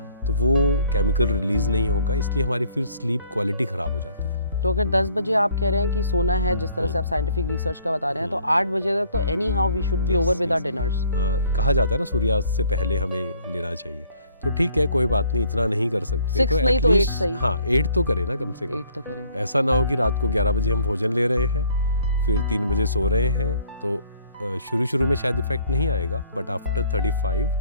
तो वो केमिकल रिलीज नहीं होगा, इसलिए हमारी फिर स्लीप क्वालिटी ख़राब हो जाती है। तो अगर 10 बजे आप कह रहे हैं कि सोना है, जिस तरह से आप साइंटिफिक रिसर्च का बता रहे हैं, तो 8 बजे तक तो anyhow we should be over with our dinners. कहा जाता है ना सूर्यास्त से पहले हमें लेना चाहिए, तो ठीक है, कोई बात नहीं, इतना नहीं कर सकते 6 तो नहीं तो 8 सही। हाँ 8 तो करें ना, कम से कम 8 तो करें। ऐसा ना हो कि रात को 11 बजे हम भोजन ले रहे हैं फिर 3 बजे सो रहे हैं, तो शुरू में शायद इफेक्ट नहीं आएगा, बट आफ्टर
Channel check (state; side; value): inverted; both; correlation -0.60